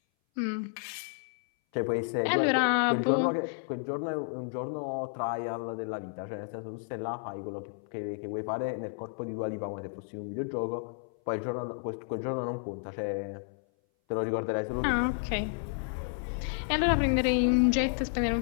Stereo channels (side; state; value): right; silent; 57 dB below the other